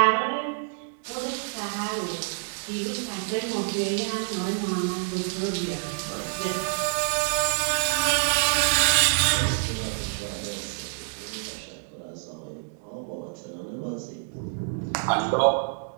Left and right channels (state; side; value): silent; left; digital silence